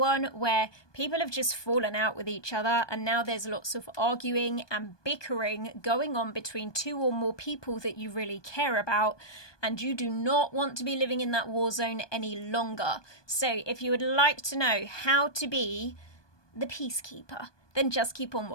where people have just fallen out with each other and now there's lots of arguing and bickering going on between two or more people that you really care about, and you do not want to be living in that war zone any longer. So if you would like to know how to be the peacekeeper, then just keep on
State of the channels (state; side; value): late; right; 1.2 ms